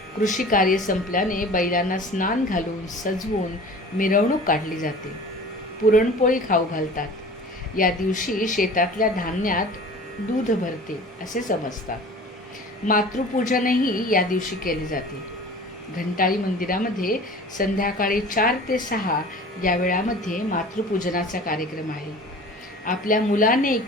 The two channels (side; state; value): both; normal; correlation 0.42